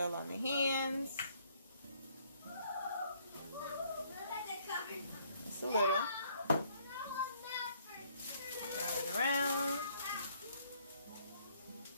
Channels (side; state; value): both; inverted; correlation -0.65